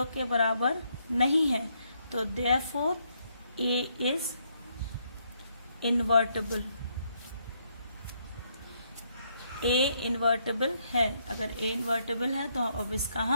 के बराबर नहीं है, तो therefore A is invertible, A invertible है। अगर ए इन्वर्टेबल है तो अब इसका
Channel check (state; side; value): inverted; both; correlation -0.74